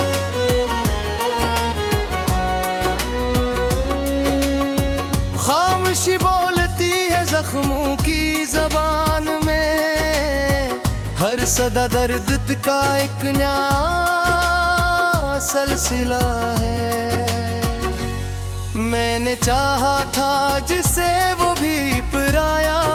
खामोशी बोलती है जख्मों की जबान में, हर सदा दर्द का एक नया सिलसिला है। मैंने चाहा था जिसे वो भी पराया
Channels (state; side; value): identical; both; correlation 1.00